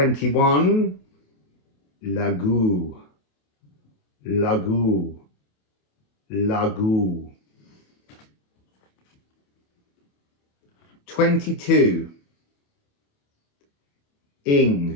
Lagu. Lagu. Lagu. 22.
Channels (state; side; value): late; right; 28 ms